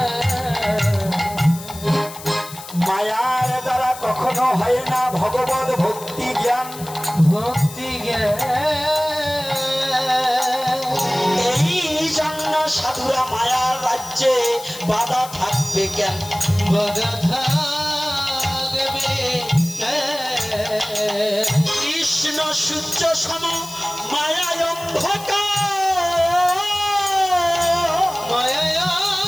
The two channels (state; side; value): noise; left; hiss, 14 dB below the sound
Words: মায়ার দ্বারা কখনো হয় না ভগবত ভক্তি জ্ঞান। ভক্তি জ্ঞান এই জন্য সাধুরা মায়ার রাজ্যে বাধা থাকবে কেন? বাধা থাকবে কৃষ্ণ সূর্য সম মায়ায় অন্ধকার।